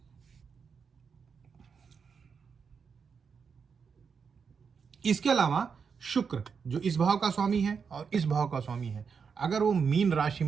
इसके अलावा शुक्र जो इस भाव का स्वामी है और इस भाव का स्वामी है, अगर वो मीन राशि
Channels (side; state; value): left; quieter; 6.0 dB